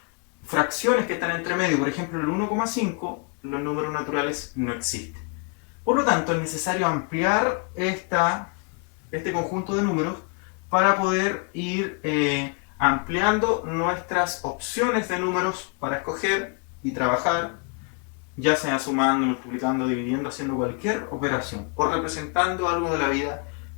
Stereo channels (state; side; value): quieter; right; 35.3 dB